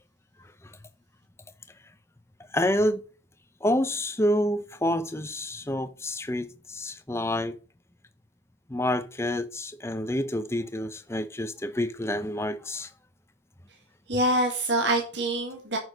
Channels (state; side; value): normal; both; correlation 0.52